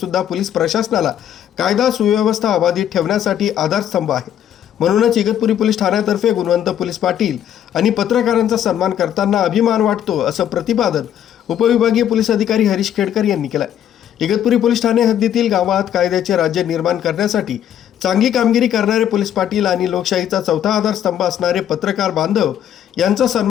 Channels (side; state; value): right; quieter; 10.2 dB